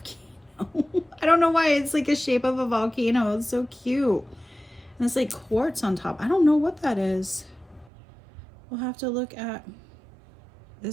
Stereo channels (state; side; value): drops out; left; at 7.9 s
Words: I don't know why it's like a shape of a volcano. It's so cute. And it's like quartz on top. I don't know what that is. We'll have to look at,